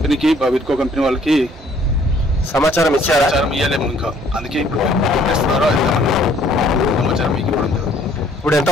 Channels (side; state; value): both; normal; correlation 0.60